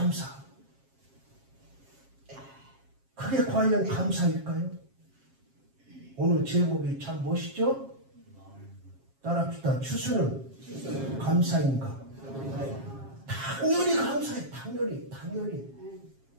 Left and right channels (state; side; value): late; left; 7.4 ms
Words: 그게 과연 감사일까요? 오늘 제목이 참 멋있죠? 따라합시다. 추수는 감사인가? 당연히 감사해. 당연히.